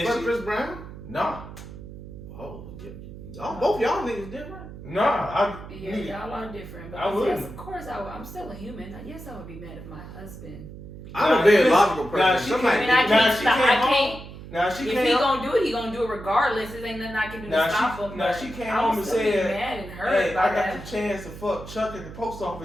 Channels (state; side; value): noise; right; hum, 14 dB below the sound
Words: fuck she- Chris Brown? Nah, Oh, yeah. Both y'all niggas different. nah. Yeah, y'all are different. But I wouldn't. yes, of course, I'm still a human. Yes, I would be mad if my husband. I'm Nah, a very listen, logical nah, person. she Somebody, I mean, I Nah, can't. she Stop, came I home. can't. Now she If came he home. gonna do it, he gonna do it regardless. It ain't nothing I can do Now to she- stop him. now but she came I home would and still be said, mad and hurt Hey, by I got that. the chance to fuck Chuck at the post